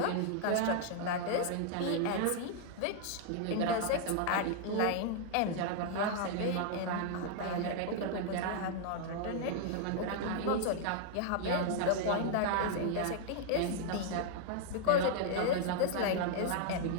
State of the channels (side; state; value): both; different; correlation -0.01